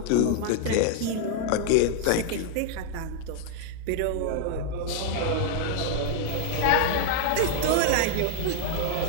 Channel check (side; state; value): both; different; correlation 0.00